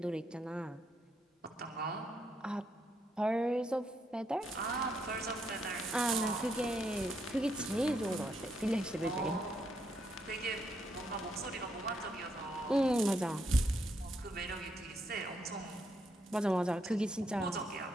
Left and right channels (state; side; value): normal; both; correlation 0.77